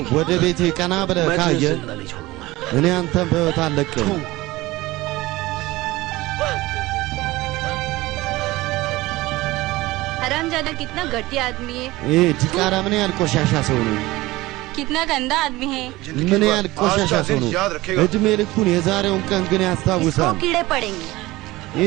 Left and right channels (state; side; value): quieter; left; 19.3 dB